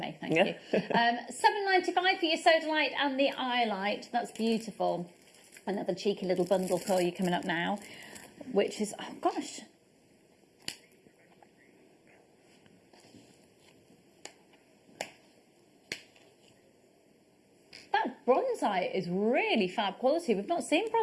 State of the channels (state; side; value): identical; both; correlation 1.00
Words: thank you. $7.95 for your sodalite and the eye light. That's beautiful. Another cheeky little bundle for you coming up now, which is, oh gosh. That bronzite is really fab quality. We've not seen